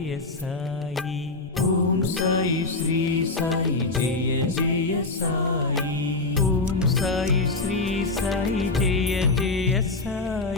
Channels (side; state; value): right; quieter; 3.3 dB